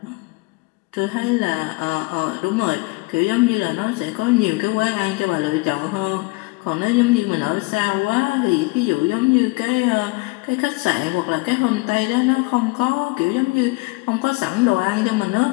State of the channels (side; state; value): right; quieter; 25.3 dB